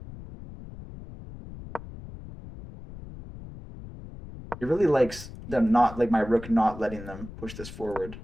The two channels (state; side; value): noise; left; rumble, 14 dB below the sound